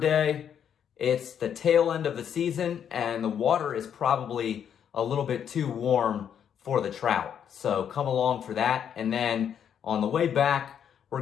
it's the tail end of the season, and the water is probably a little bit too warm for the trout. So come along for that. And then on the way back, we're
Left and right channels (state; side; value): quieter; right; 8.6 dB